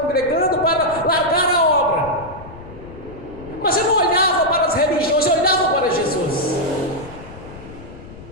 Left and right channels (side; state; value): left; noise; rumble, 17 dB below the sound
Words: congregando, para largar a obra, mas eu não olhava para as religiões, eu olhava para Jesus.